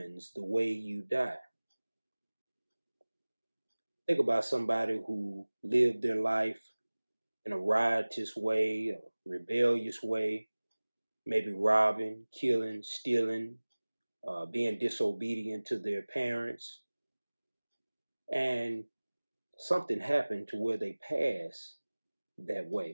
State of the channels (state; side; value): inverted; both; correlation -1.00